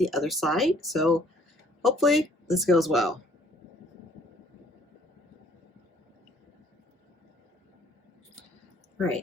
other side. So hopefully this goes well. All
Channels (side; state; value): both; normal; correlation 0.59